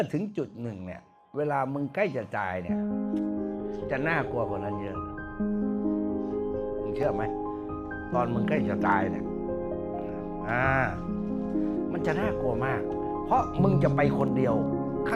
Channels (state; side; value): identical; both; correlation 1.00